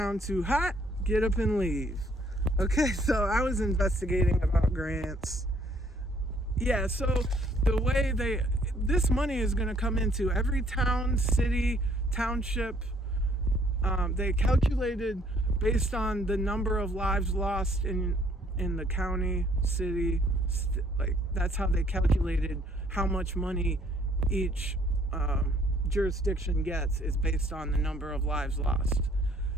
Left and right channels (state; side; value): normal; both; correlation 0.64